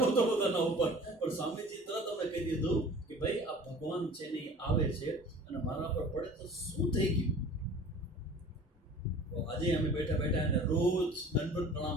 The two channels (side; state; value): both; normal; correlation 0.44